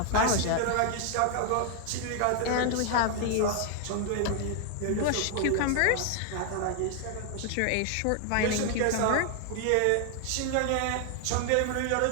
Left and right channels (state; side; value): different; both; correlation 0.00